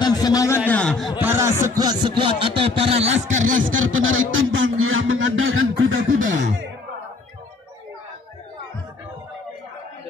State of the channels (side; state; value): right; quieter; 3.8 dB